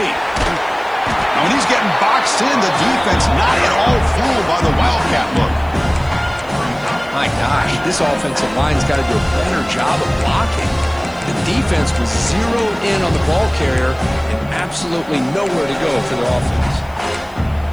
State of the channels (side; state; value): left; noise; hiss, 29 dB below the sound